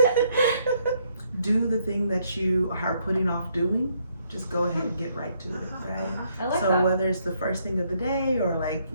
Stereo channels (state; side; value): inverted; both; correlation -0.71